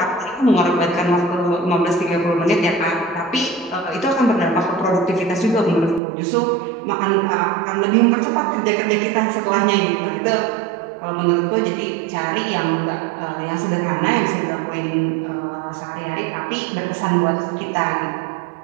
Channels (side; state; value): left; drops out; at 6.0 s